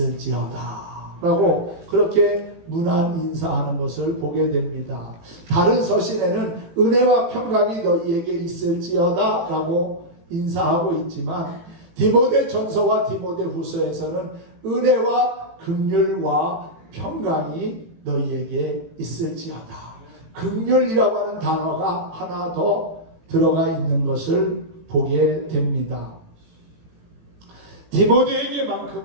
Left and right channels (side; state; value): left; late; 18 ms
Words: 라고 그렇게 문안 인사하는 것을 보게 됩니다. 다른 서신에는 은혜와 평강이 너희에게 있을지어다 라고 인사하고 있지만 디모데 전서와 디모데 후서에서는 은혜와 긍휼과 평강이 너희에게 있을지어다. 긍휼이라고 하는 단어가 하나 더 들어가 있는 것을 보게 됩니다.